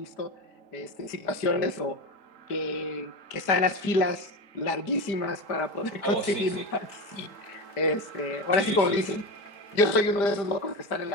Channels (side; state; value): right; late; 5.0 ms